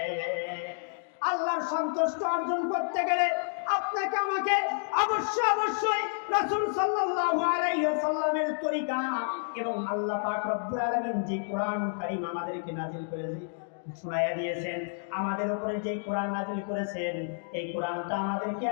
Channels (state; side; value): silent; right; digital silence